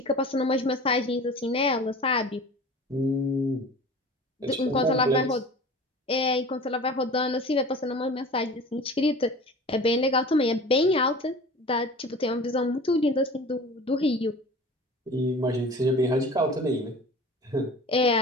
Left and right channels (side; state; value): both; normal; correlation 0.39